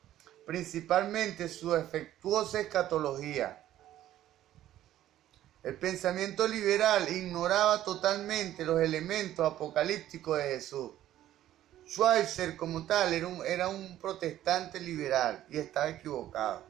principalmente en su defectuosa escatología. El pensamiento liberal ignoraba totalmente los elementos apocalípticos de Jesús. Schweitzer como tal era un protestante liberal y estaba equivocado.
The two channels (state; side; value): quieter; left; 12.9 dB